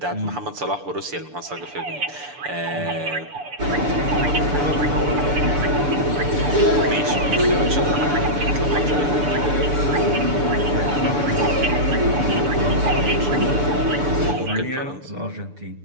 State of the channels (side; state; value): left; late; 6.8 ms